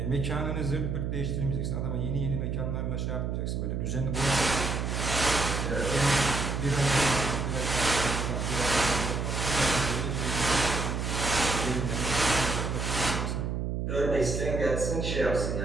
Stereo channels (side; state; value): right; noise; hum, 1 dB below the sound